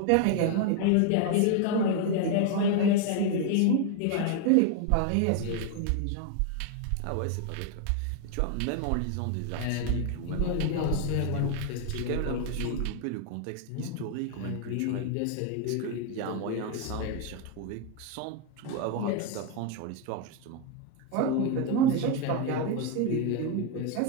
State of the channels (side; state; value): both; different; correlation 0.01